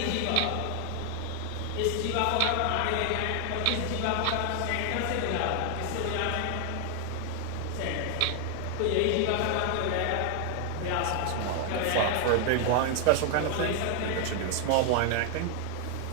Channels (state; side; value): different; both; correlation 0.00